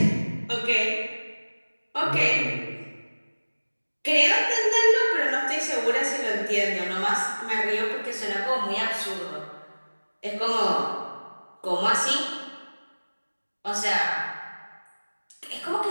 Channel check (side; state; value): both; inverted; correlation -1.00